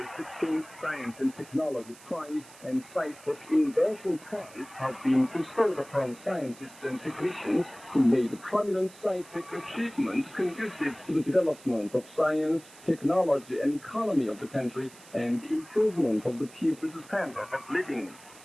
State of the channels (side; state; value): right; noise; hiss, 21 dB below the sound